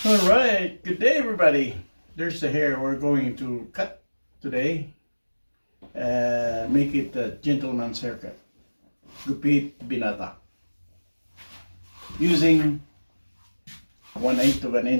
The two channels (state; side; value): inverted; both; correlation -1.00